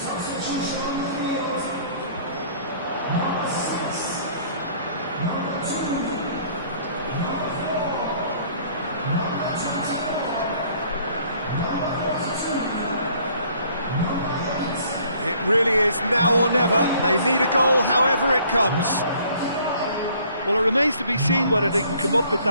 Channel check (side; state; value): both; inverted; correlation -0.58